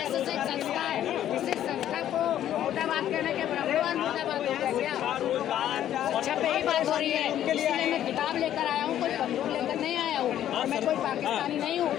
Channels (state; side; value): quieter; right; 11.4 dB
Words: एक संस्था है, इसी संस्था को मुर्दाबाद कहने के ब्राह्मणवाद मुर्दाबाद हो गया क्या? अच्छा पे ही बात हो रही है, इसलिए मैं किताब लेकर आया हूँ, कोई बंदूक लेकर नहीं आया हूँ और मैं कोई पाकिस्तानी नहीं हूँ।